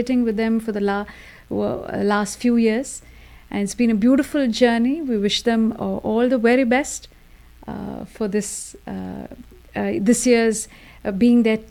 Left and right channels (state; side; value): identical; both; correlation 1.00